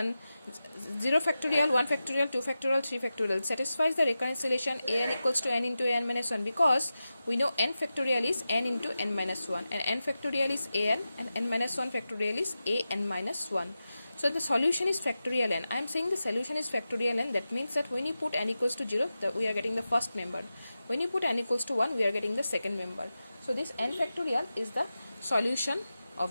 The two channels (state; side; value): inverted; both; correlation -0.92